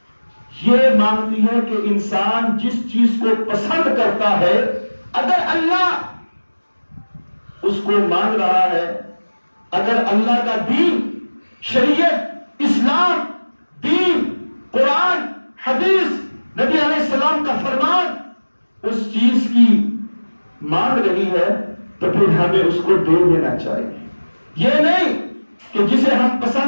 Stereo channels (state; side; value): inverted; both; correlation -1.00